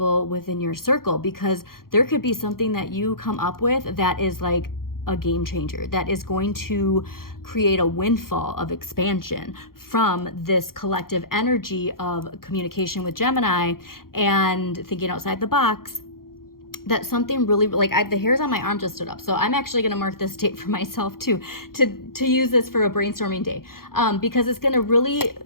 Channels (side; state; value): right; late; 0.92 ms